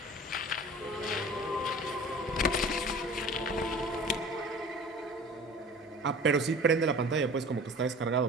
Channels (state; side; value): normal; both; correlation 0.42